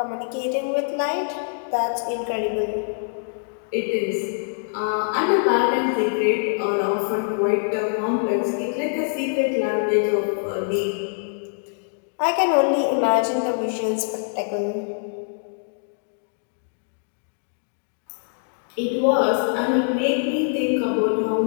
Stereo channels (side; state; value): right; silent; digital silence